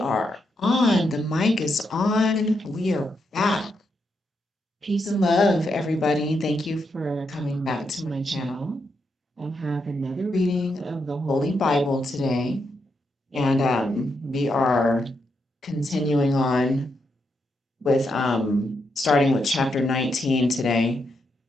on. The mic is on. We are back. Peace and love, everybody. Thank you for coming back to my channel. I have another reading of the Holy Bible today, and we are continuing on with starting with chapter 19 today.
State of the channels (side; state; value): both; normal; correlation 0.81